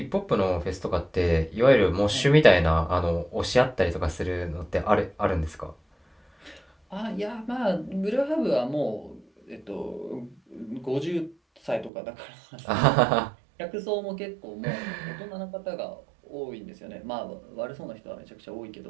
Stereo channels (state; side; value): drops out; left; at 11.9 s